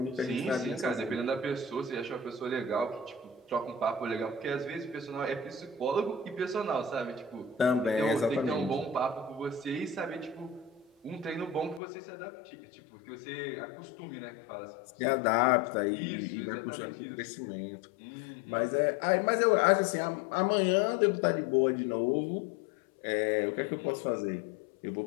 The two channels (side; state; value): right; drops out; at 11.8 s